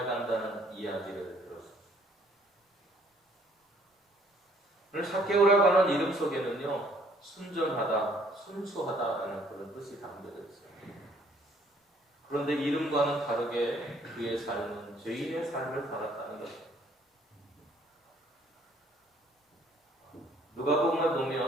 이야기를 들었습니다. 오늘 삭개오라고 하는 이름 속에는요, 순전하다, 순수하다라는 그런 뜻이 담겨져 있어요. 그런데 이름과는 다르게 그의 삶은 죄인의 삶을 살았다는 것입니다. 누가복음을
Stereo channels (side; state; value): both; normal; correlation 0.62